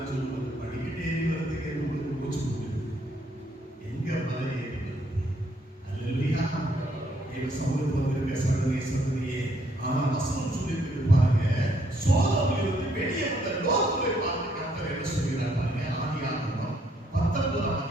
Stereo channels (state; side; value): normal; both; correlation 0.69